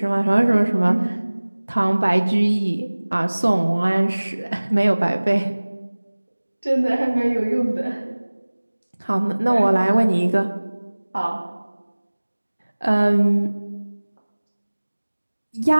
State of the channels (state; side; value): inverted; both; correlation -1.00